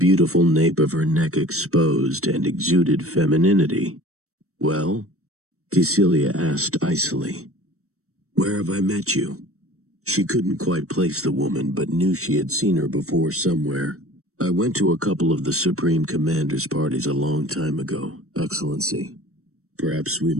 nape of her neck exposed, and exuded femininity. "Well?" Cecilia asked icily. "Where have I met you?" She couldn't quite place the woman, but knew she had seen her before somewhere. "I went to a couple of the Supreme Commander's parties a long time ago, Excellency. Perhaps we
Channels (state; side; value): late; left; 0.64 ms